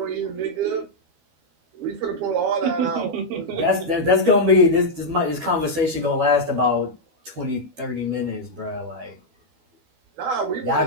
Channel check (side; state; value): left; late; 12 ms